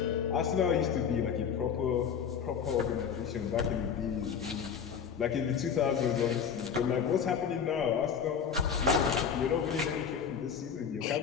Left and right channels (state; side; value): quieter; right; 7.2 dB